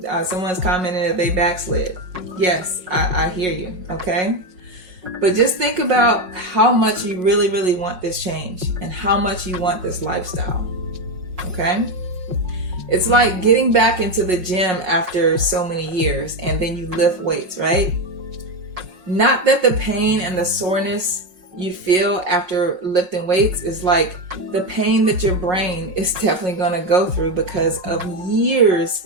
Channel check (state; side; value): late; left; 5.5 ms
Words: Someone's commented that they backslid. Yes, I hear you, okay? But just think about how much you really, really want this change and how much you want this lifestyle, okay? It's like getting back into the gym after so many years and then you lift weights, right? Not that the pain and the soreness you feel after lifting weights is like the pain that your brain is definitely going to go through because of